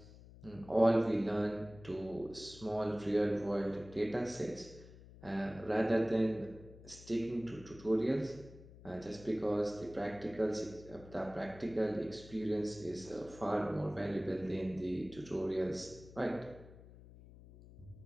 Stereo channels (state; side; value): noise; left; hum, 19 dB below the sound